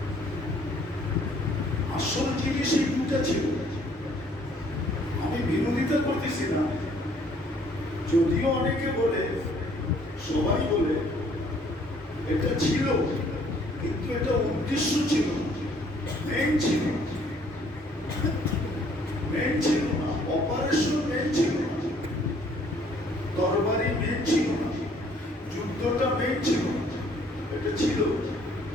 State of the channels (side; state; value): both; normal; correlation 0.61